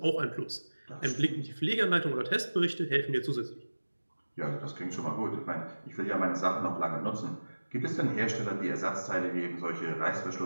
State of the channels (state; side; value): inverted; both; correlation -1.00